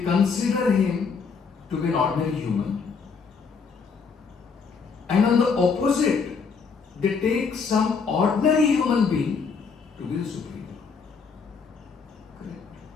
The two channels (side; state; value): right; quieter; 5.4 dB